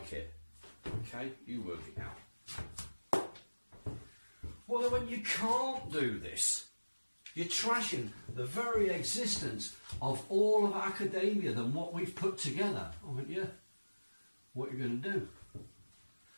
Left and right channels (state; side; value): inverted; both; correlation -1.00